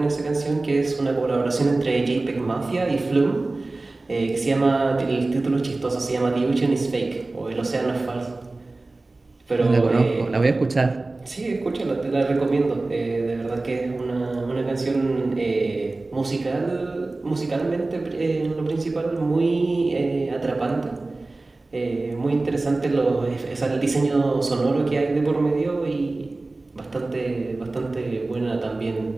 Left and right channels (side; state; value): left; quieter; 3.2 dB